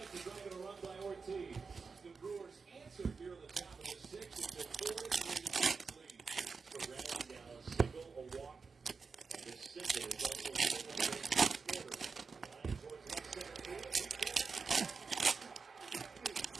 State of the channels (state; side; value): quieter; left; 4.9 dB